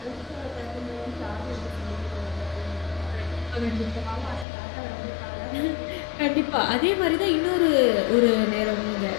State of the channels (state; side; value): drops out; right; at 4.5 s